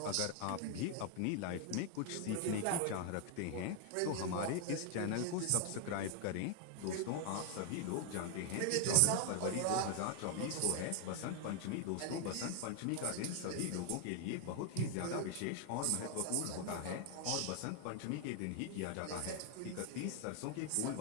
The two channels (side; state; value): both; different; correlation 0.00